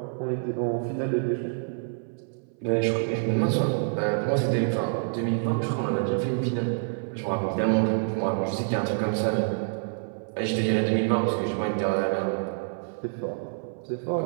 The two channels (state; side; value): silent; left; 59 dB below the other